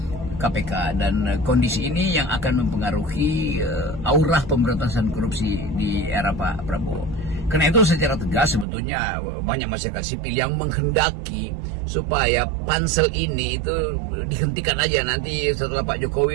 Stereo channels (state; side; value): drops out; left; at 8.7 s